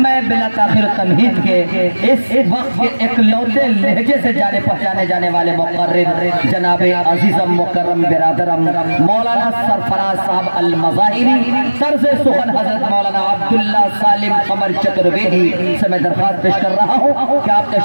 میں بلا تاخیر تمہید کے اس وقت کے اکلوتے لہجے سے جانے پہچانے جانے والے مقرر جناب عزیزم مکرم برادرم مولانا سرفراز صاحب المظاہری، طرز سخن حضرت مولانا عبداللہ سالم قمر چترویدی سے میں درخواست پیش کر رہا ہوں کہ آپ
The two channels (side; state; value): both; inverted; correlation -1.00